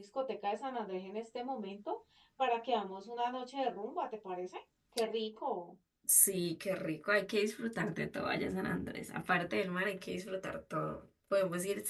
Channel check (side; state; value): both; identical; correlation 1.00